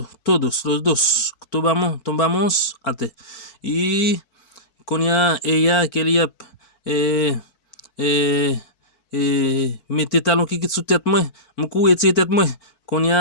los dos. Tombamos ate. Y con ella quería meter talon qui sous tête moi, me courir tête moi. Quand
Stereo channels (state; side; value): late; right; 4.4 ms